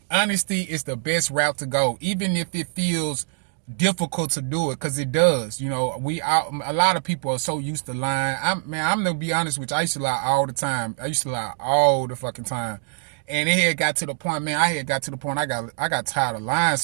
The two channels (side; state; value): left; silent; digital silence